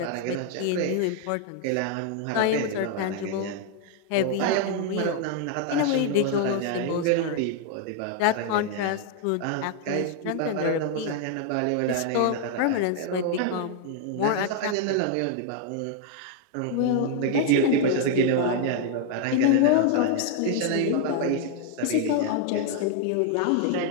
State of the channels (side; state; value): both; different; correlation 0.00